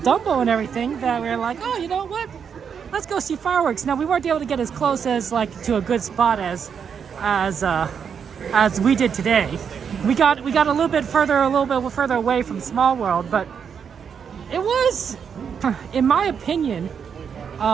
Dumbo and everything that we were like, oh, you know what? Let's go see fireworks. Now we weren't able to get as close as to a good spot as we did today. We got a little bit further away from Small World, but it was, in my opinion,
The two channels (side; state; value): left; quieter; 7.1 dB